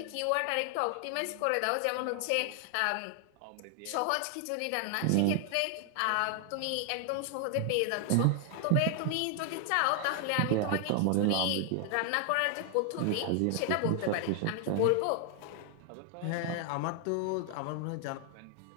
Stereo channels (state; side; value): different; both; correlation 0.00